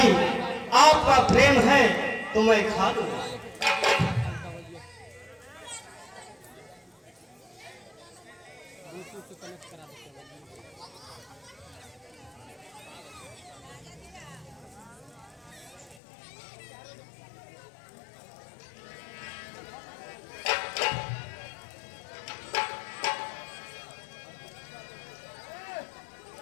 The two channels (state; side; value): drops out; right; at 16.0 s